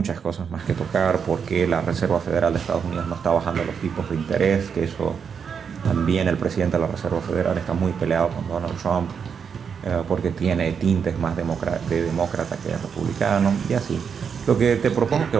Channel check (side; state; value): left; quieter; 6.7 dB